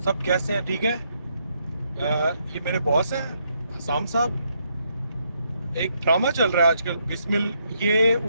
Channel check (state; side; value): inverted; both; correlation -0.76